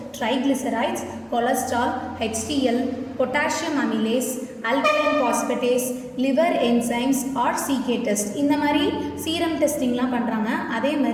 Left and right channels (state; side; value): identical; both; correlation 1.00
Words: triglycerides, cholesterol, HDL, potassium amylase, alkaline phosphatase, liver enzymes or CK test, இந்த மாதிரி சீரம் டெஸ்டிங்லாம் பண்ணுறாங்க. அதே